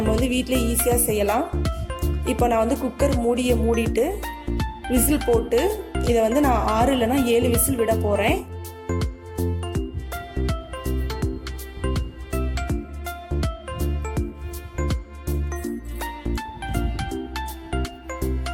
வந்து வீட்டிலே ஈஸியாக செய்யலாம். இப்போ நான் வந்து குக்கர் மூடியை மூடிட்டு விசில் போட்டு இதை வந்து நான் 6 இல்லைனா 7 விசில் விட போகிறேன்.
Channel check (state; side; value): identical; both; correlation 1.00